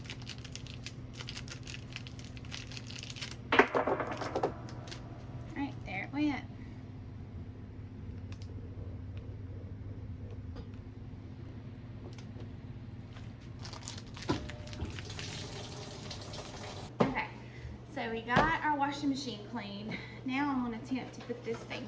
Alright, there it went. So we got our washing machine clean. Now I'm going to attempt to put this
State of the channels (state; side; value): identical; both; correlation 1.00